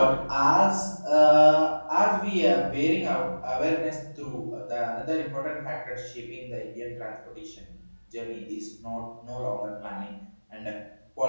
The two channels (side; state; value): both; inverted; correlation -1.00